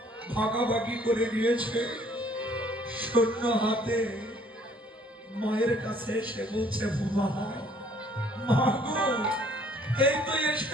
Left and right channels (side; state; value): both; normal; correlation 0.60